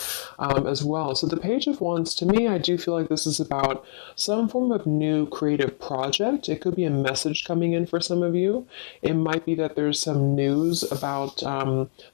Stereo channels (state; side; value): silent; right; digital silence